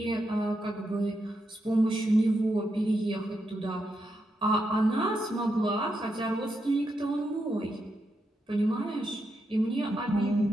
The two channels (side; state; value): both; normal; correlation 0.84